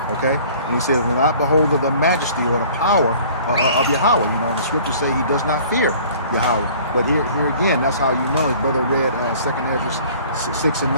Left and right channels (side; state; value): both; inverted; correlation -0.51